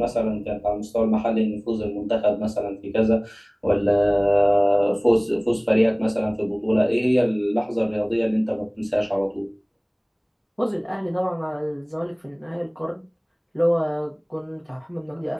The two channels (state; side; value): identical; both; correlation 1.00